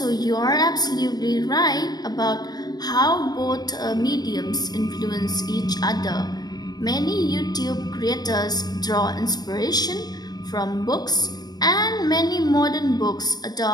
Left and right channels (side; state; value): right; late; 0.19 ms